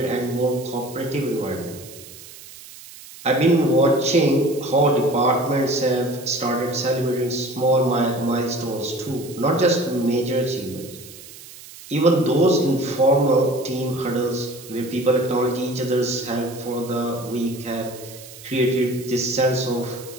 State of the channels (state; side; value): noise; right; hiss, 17 dB below the sound